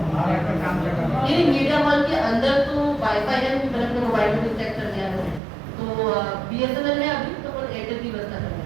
ये मीडिया हॉल के अंदर तो वाईफाई है, मैंने अपने मोबाइल में चेक कर लिया है, तो बीएसएनएल है अभी तो एयरटेल की व्यवस्था कर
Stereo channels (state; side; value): drops out; left; at 5.4 s